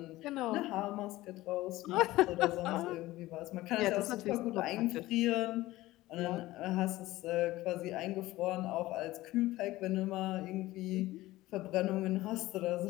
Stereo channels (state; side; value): quieter; right; 17.5 dB